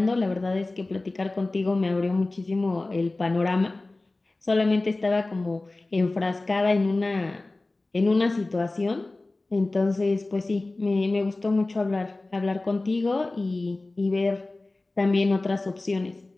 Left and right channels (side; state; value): right; quieter; 3.0 dB